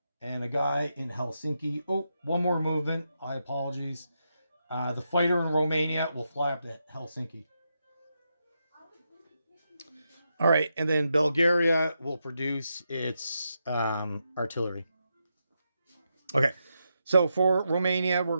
and a guy in Helsinki. Oh, one more movement. I apologize. The fighter in Romania will fly up to Helsinki. All right, and then Bulgaria will produce its artillery. Okay, so for Romania, we're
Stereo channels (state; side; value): inverted; both; correlation -0.84